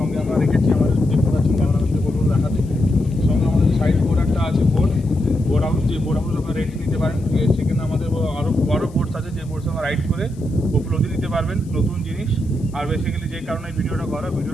আমরা রেখেছি, আমাদের দেখতে পাচ্ছেন ক্যামেরাতে বলবো দেখাতে। সঙ্গে আমাদের সাইড বোট একটা আছে, বোট হাউস, যে বোট হাউস আপনারা রেন্ট নিতে পারেন। সেখানে আমাদের আরও বড় বোটস আছে, যে বোটস আমরা রাইড করে উপলব্ধি নিতে পারবেন নতুন জিনিস। আর বেসিক্যালি যে কারণে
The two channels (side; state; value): left; noise; hiss, 27 dB below the sound